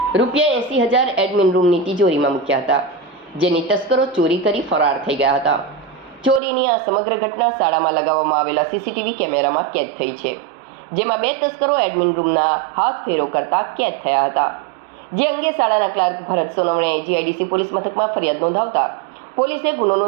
રૂપિયા 80,000 એડમિન રૂમની તિજોરીમાં મૂક્યા હતા, જેની તસ્કરો ચોરી કરી ફરાર થઈ ગયા હતા. ચોરીની આ સમગ્ર ઘટના શાળામાં લગાવવામાં આવેલા સીસીટીવી કેમેરામાં કેદ થઈ છે, જેમાં 2 તસ્કરો એડમિન રૂમના હાથ ફેરો કરતા કેદ થયા હતા. જે અંગે શાળાના ક્લાર્ક ભરત સોનવણેએ જીઆઈડીસી પોલીસ મથકમાં ફરિયાદ નોંધાવતા પોલીસે ગુનો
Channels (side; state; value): left; drops out; at 6.4 s